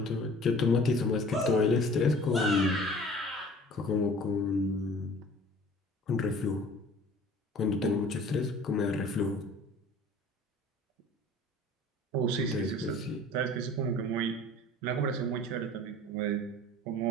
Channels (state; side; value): normal; both; correlation 0.47